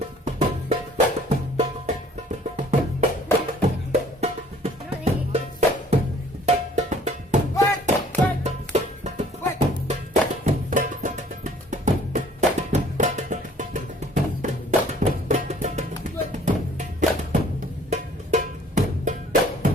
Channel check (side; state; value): both; normal; correlation 0.56